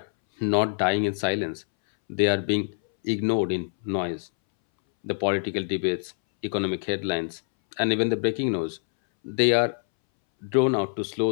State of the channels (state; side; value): silent; right; 61 dB below the other